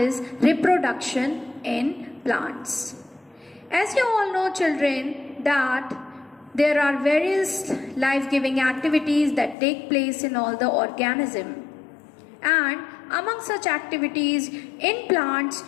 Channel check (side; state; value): right; drops out; at 9.6 s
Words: reproduction in plants. As you all know, children, that there are various life-giving activities that take place in all the organism. And among such activities in plants,